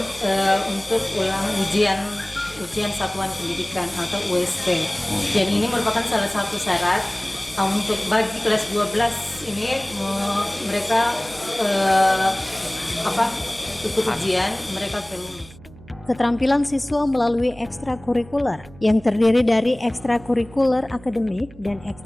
untuk ujian satuan pendidikan atau USP. Dan ini merupakan salah satu syarat untuk bagi kelas 12 ini mereka ikut ujian, mereka lulus. Keterampilan siswa melalui ekstrakurikuler yang terdiri dari ekstrakurikuler akademik dan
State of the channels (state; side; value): noise; right; hum, 21 dB below the sound